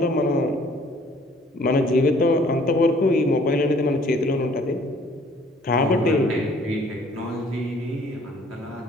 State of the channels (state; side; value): normal; both; correlation 0.58